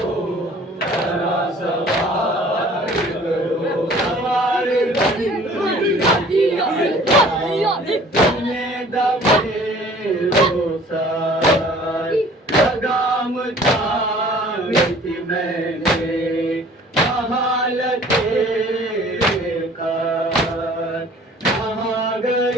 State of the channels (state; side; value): normal; both; correlation 0.51